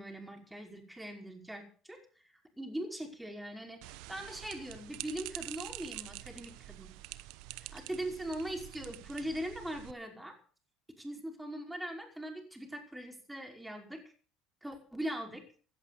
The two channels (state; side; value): normal; both; correlation 0.81